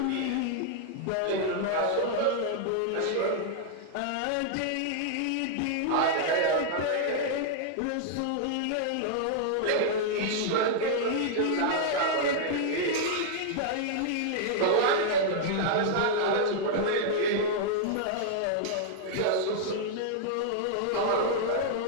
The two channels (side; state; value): both; different; correlation -0.01